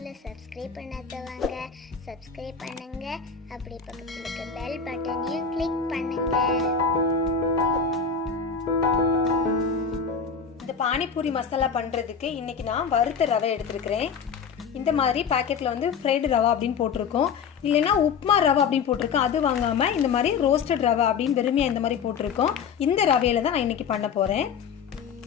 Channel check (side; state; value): right; quieter; 6.3 dB